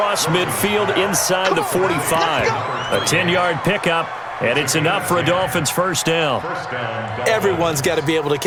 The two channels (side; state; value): both; identical; correlation 1.00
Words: midfield inside the 45. A 10-yard pickup, And it's enough for a Dolphins first down. Everyone's got to be able to